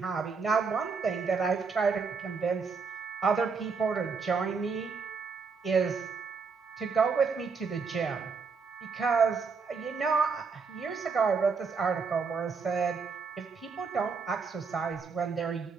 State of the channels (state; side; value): quieter; left; 5.1 dB